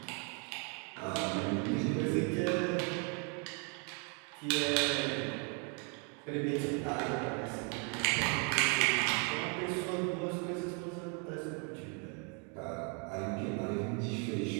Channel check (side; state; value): left; quieter; 36.7 dB